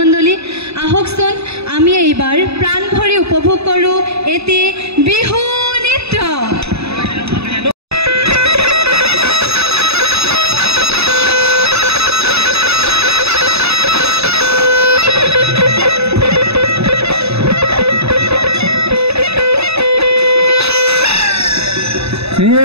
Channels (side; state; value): left; late; 0.79 ms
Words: আহকচোন আমি এইবাৰ প্ৰাণ ভৰি উপভোগ কৰোঁ এটি বিহু নৃত্য।